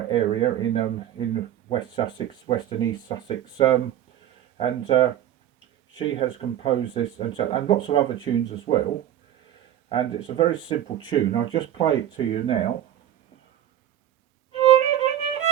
area in West Sussex, West and East Sussex, and she has composed this and lots of other tunes as well. And it's a very simple tune. I'll just play it to you now.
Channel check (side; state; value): left; quieter; 11.5 dB